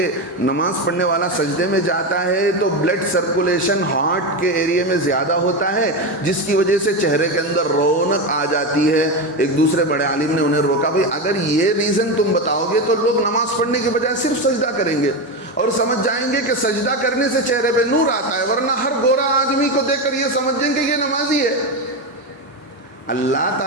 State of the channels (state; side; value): normal; both; correlation 0.15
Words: نماز پڑھنے والا سجدے میں جاتا ہے تو بلڈ سرکولیشن ہارٹ کے ایریے میں زیادہ ہوتا ہے، جس کی وجہ سے چہرے کے اندر رونق آ جاتی ہے۔ ایک دوسرے بڑے عالم نے انہیں روکا، بھئی اگر یہ ریزن تم بتاؤ گے تو لوگ نماز پڑھنے کے بجائے صرف سجدہ کریں گے اور سمجھ جائیں گے کہ سجدہ کرنے سے چہرے پہ نور آتا ہے، ورنہ ہر گورا آدمی کو دیکھ کر یہ سمجھیں کہ یہ نمازی ہے۔ اللہ